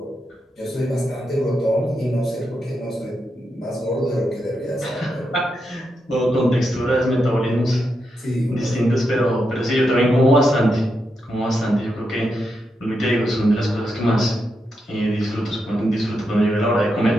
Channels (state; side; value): normal; both; correlation 0.84